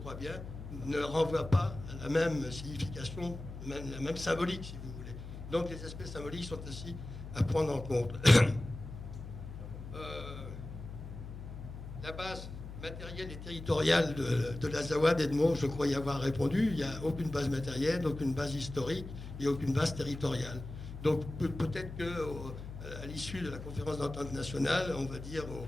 bien, ne renvoie pas à la même signification, la même symbolique, si vous voulez. Donc les aspects symboliques sont ainsi à prendre en compte. La base matérielle et territoriale de l'Azawad, Edmond, je crois y avoir répondu. Il n'y a aucune base matérielle, aucune base historique et aucune base territoriale. Donc peut-être qu'à l'issue de la conférence d'entente nationale, on va dire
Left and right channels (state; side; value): noise; left; hum, 11 dB below the sound